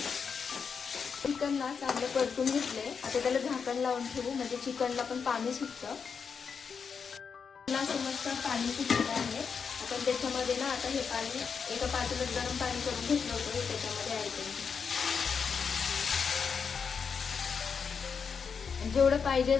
चिकनला चांगलं परतून घेतले, आता त्याला झाकण लावून ठेवू, म्हणजे चिकनला पण पाणी सुटतं। समजतं पाणी सुटलेलं आहे, आपण त्याच्यामध्ये ना आता हे पाणी एका पातेल्यात गरम पाणी करून घेतलं होतं, हे त्याच्यामध्ये ऍड करू। जेवढं पाहिजे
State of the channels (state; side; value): quieter; right; 6.1 dB